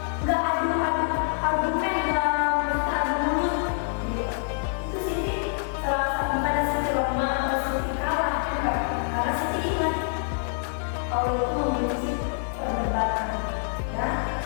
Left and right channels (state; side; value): silent; right; 61 dB below the other